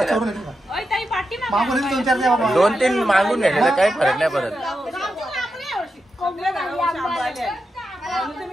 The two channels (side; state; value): both; normal; correlation 0.88